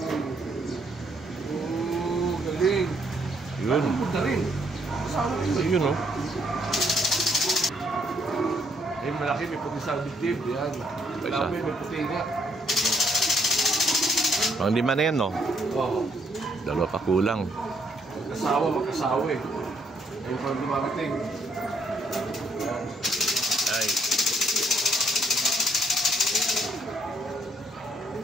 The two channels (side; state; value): both; normal; correlation 0.70